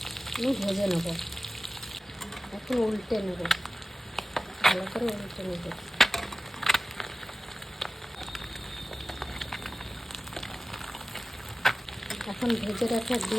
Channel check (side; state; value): both; normal; correlation 0.96